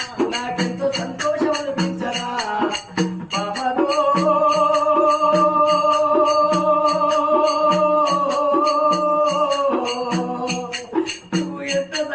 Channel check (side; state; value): both; identical; correlation 1.00